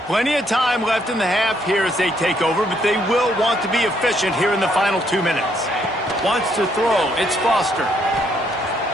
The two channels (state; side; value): normal; both; correlation 0.71